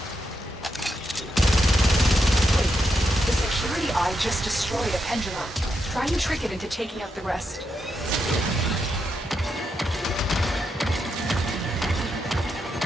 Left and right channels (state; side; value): normal; both; correlation 0.83